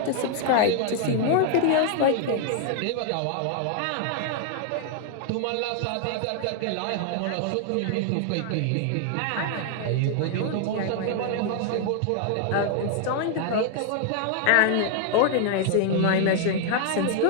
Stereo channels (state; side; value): different; both; correlation 0.00